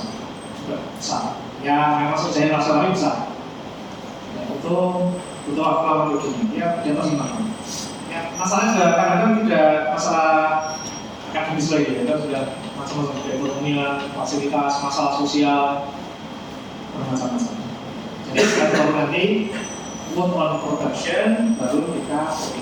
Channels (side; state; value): both; identical; correlation 1.00